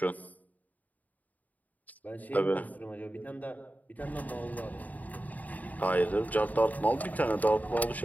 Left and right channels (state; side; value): late; right; 0.076 ms